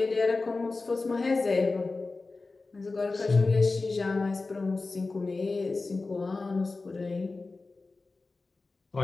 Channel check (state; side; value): quieter; right; 3.7 dB